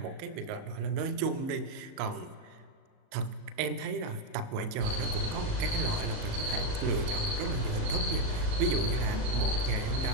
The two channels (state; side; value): late; left; 37 ms